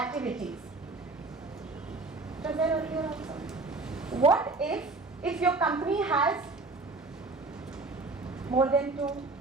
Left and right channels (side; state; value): left; quieter; 3.5 dB